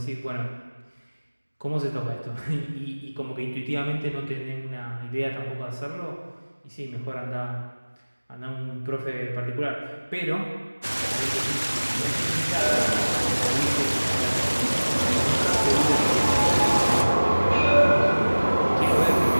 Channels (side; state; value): both; inverted; correlation -1.00